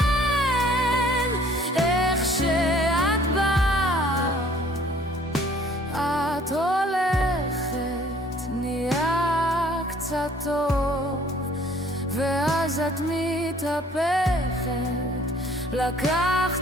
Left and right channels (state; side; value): normal; both; correlation 0.56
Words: איך שאת באה, את הולכת, נהיה קצת טוב, ואז את מתהפכת,